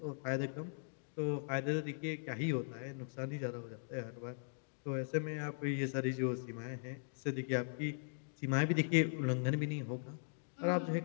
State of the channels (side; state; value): right; silent; digital silence